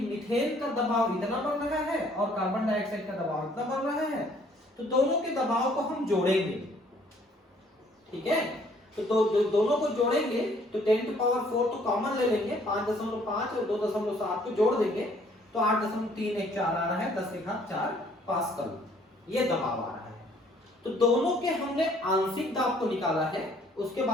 मीथेन का दबाव इतना बढ़ रहा है और कार्बन डाइऑक्साइड का दबाव इतना बढ़ रहा है, तो दोनों के दबाव को हम जोड़ेंगे, ठीक है। तो दोनों को जोड़ेंगे तो 10⁴ तो कॉमन ले लेंगे, 5.5 और 2.7 को जोड़ देंगे तो 8.314 आ रहा है, 10⁴ पास्कल ये दबाव आ रहा है। तो दोनों के हमने आंशिक दाब को निकाला है, उसके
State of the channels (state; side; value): normal; both; correlation 0.61